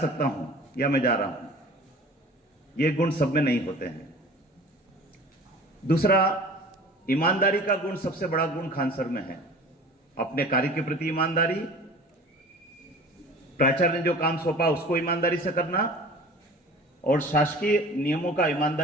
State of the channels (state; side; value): normal; both; correlation 0.43